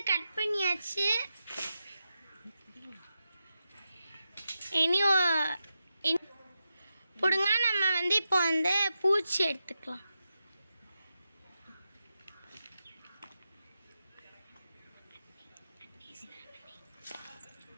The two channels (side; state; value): both; inverted; correlation -0.89